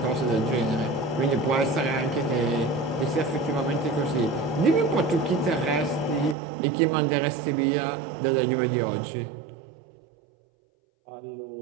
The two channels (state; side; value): drops out; left; at 6.4 s